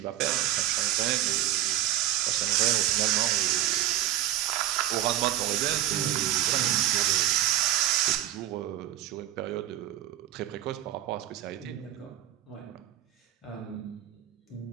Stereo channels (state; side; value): quieter; left; 12.9 dB